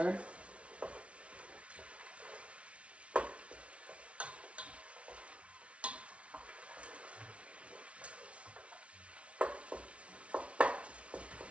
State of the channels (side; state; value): left; late; 0.062 ms